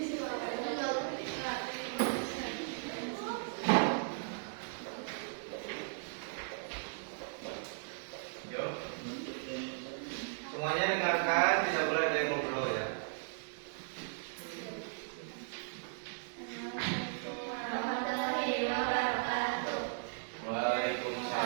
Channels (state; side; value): silent; left; digital silence